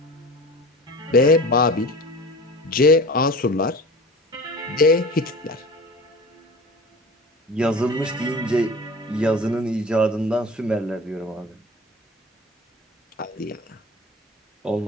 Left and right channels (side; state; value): both; normal; correlation 0.37